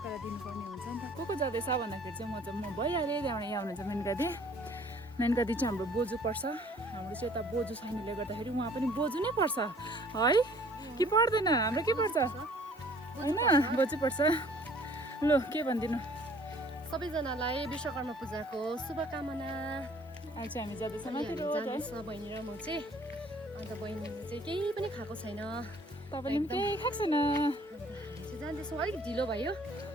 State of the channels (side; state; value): both; normal; correlation 0.55